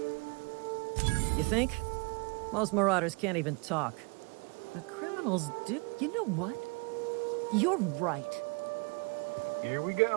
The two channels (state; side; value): quieter; left; 30.7 dB